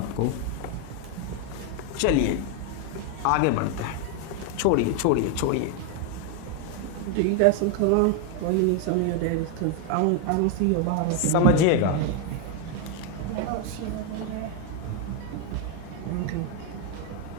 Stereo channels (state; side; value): different; both; correlation 0.01